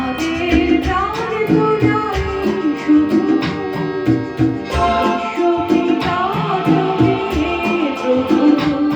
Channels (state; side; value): identical; both; correlation 1.00